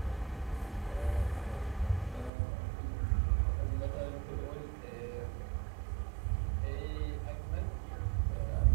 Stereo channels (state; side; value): drops out; left; at 2.3 s